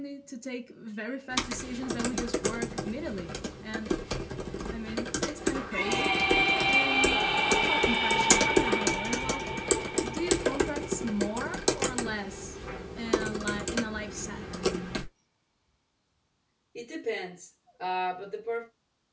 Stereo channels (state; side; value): identical; both; correlation 1.00